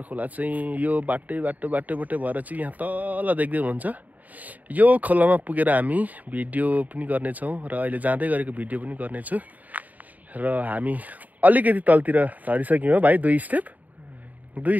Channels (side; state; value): left; late; 0.077 ms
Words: खोला चाहिँ यो बाटै भएर चाहिँ यहाँ तल देख्दै हुनुहुन्छ। यो खोलामा पुगेर हामी भिडियो पनि गर्नेछौँ र अहिले जाँदै गरेको भिडियो पनि गर्नेछु। र हामी अलिकति तलतिर झरिसक्यौँ भाइ, दुई